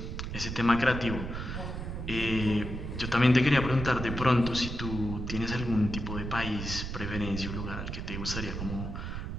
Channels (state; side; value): noise; right; rumble, 5 dB below the sound